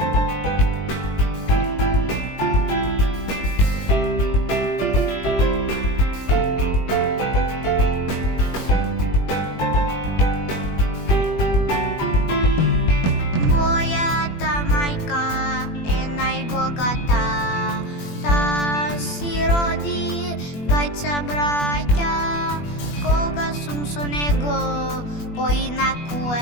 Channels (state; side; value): late; right; 21 ms